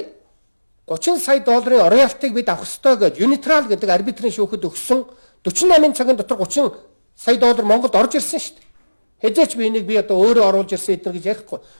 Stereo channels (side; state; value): both; inverted; correlation -1.00